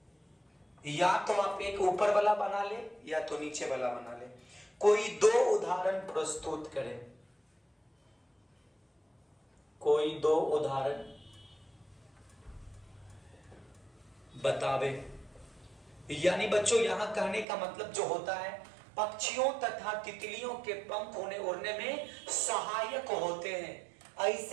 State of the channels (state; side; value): drops out; left; at 17.4 s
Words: या तो आप एक ऊपर वाला बना ले या तो नीचे वाला बना ले। कोई दो उदाहरण प्रस्तुत करें, कोई दो उदाहरण बतावे। यानी बच्चों यहां कहने का मतलब जो होता है, पक्षियों तथा तितलियों के पंख उन्हें उड़ने में सहायक होते हैं।